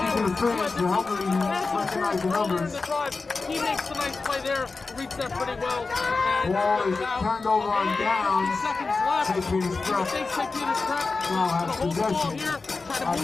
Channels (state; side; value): quieter; right; 4.0 dB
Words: you to the fans for helping me recognize the numbers. He makes the nice play there, reads that pretty well. And ball is turned over on downs. Seconds left. St. Peter's Prep St. Peter's Prep now has possession at